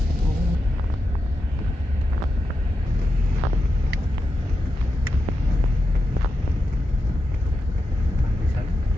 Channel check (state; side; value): normal; both; correlation 0.88